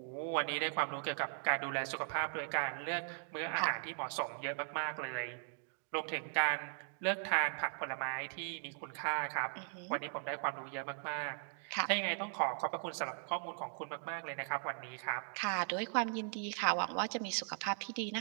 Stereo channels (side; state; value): left; silent; 52 dB below the other